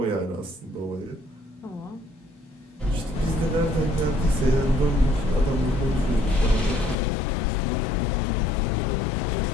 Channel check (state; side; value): drops out; right; at 7.0 s